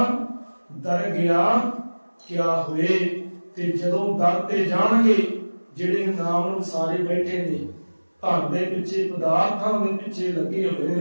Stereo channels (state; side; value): inverted; both; correlation -1.00